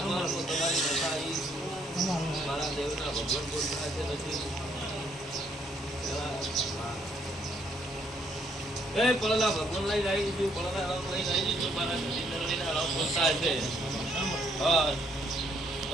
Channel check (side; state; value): both; normal; correlation 0.69